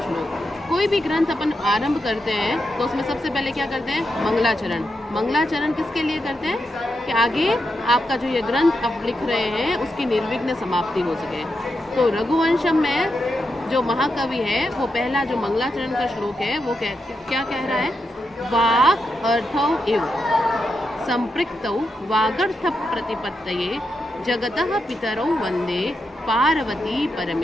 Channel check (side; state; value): both; normal; correlation 0.85